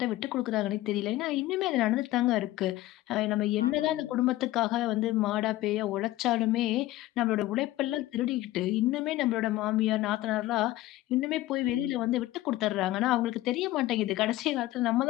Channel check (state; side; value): quieter; right; 16.2 dB